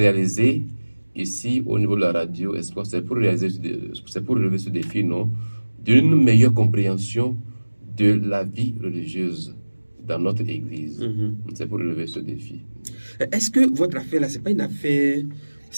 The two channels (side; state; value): both; inverted; correlation -1.00